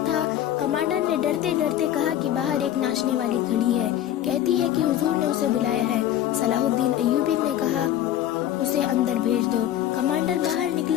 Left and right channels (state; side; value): quieter; right; 11.7 dB